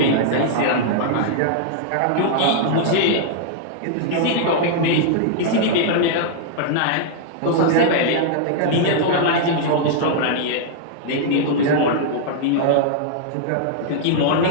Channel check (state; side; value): different; both; correlation -0.01